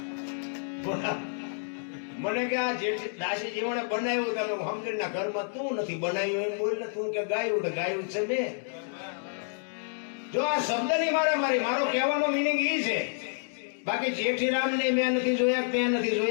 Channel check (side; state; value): right; silent; digital silence